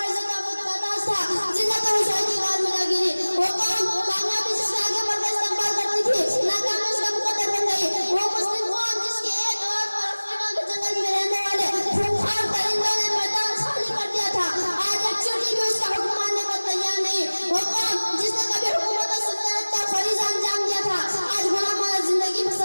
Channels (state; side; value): inverted; both; correlation -1.00